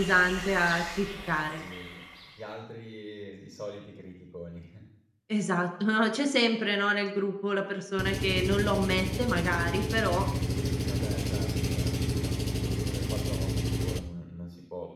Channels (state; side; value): identical; both; correlation 1.00